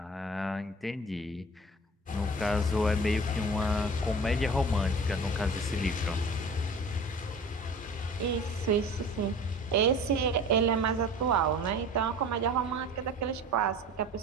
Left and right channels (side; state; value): both; normal; correlation 0.41